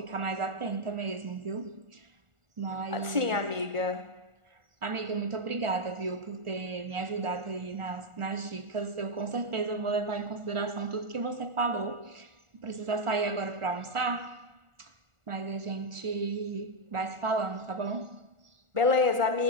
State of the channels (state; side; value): late; left; 1.4 ms